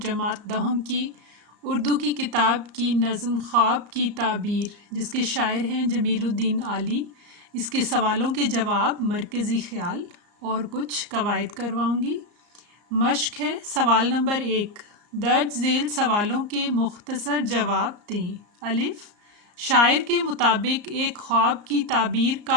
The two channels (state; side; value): late; left; 34 ms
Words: जमात दहम की उर्दू की किताब की नज़म ख्वाब की ताबीर, जिसके शायर हैं जमीलुद्दीन आली, इसके सवालों के जवाब, मरकज़ी ख्याल और कुछ कवायद करवाऊँगी। मश्क है। सवाल नंबर 1, दर्ज झेल सवालों के मुख्तसर जवाब दें। अलिफ, शायर के मुताबिक एक ख्वाब की ताबीर का